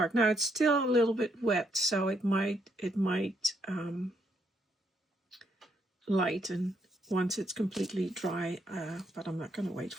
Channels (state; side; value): normal; both; correlation 0.74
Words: Now it's still a little bit wet, so it might lighten once it's completely dry, but I'm not going to wait